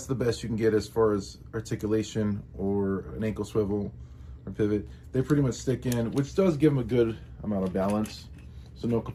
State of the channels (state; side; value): identical; both; correlation 1.00